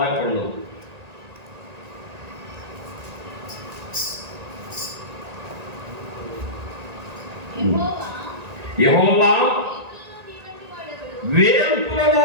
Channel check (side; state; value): left; late; 1.8 ms